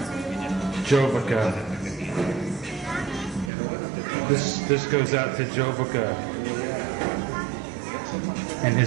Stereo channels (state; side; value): drops out; left; at 3.5 s